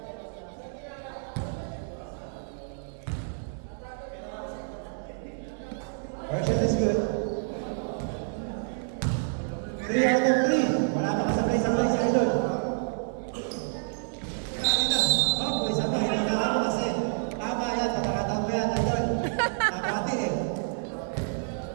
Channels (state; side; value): silent; left; 59 dB below the other